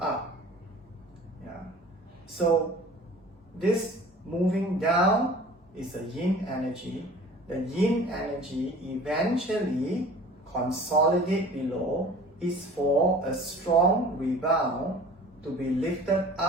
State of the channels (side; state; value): both; normal; correlation 0.44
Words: Yeah. So this moving down is a yin energy. The yin energy eventually consolidate below is for a strong rebound to be lifted